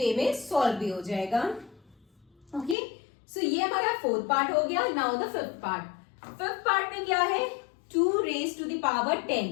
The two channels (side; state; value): right; drops out; at 2.8 s